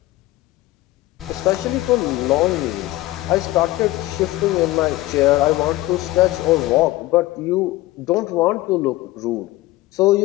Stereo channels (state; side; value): quieter; right; 17.7 dB